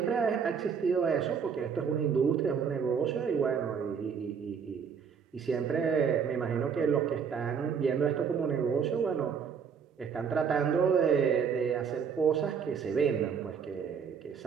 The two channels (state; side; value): quieter; left; 6.7 dB